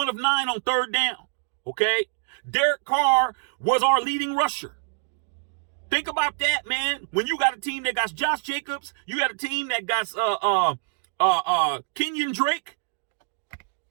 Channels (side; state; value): left; silent; digital silence